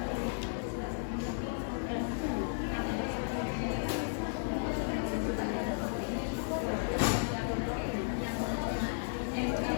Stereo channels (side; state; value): right; silent; digital silence